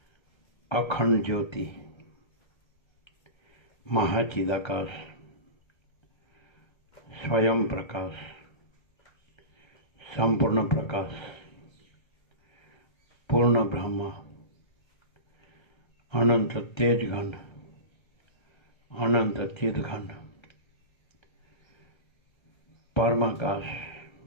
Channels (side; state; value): right; late; 1.3 ms